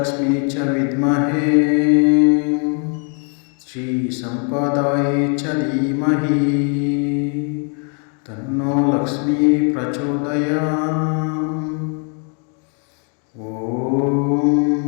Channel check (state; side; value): quieter; right; 39.9 dB